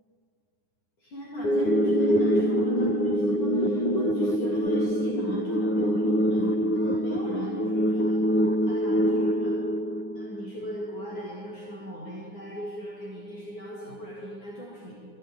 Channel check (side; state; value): right; late; 9.7 ms